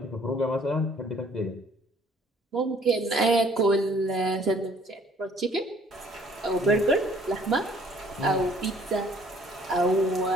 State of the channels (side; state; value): both; normal; correlation 0.58